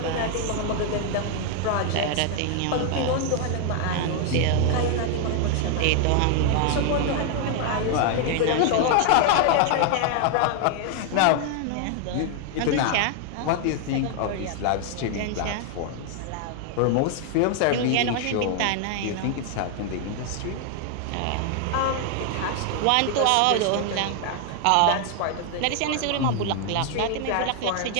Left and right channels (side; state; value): both; different; correlation 0.00